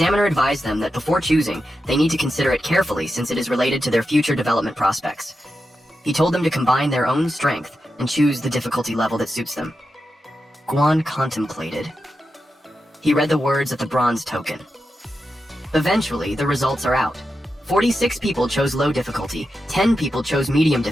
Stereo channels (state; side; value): normal; both; correlation 0.89